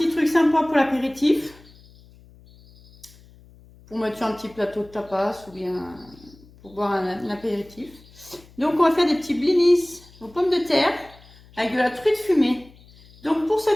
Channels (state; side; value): noise; left; hum, 25 dB below the sound